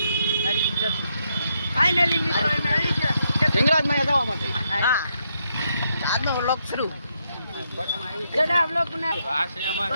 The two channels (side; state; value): both; inverted; correlation -0.79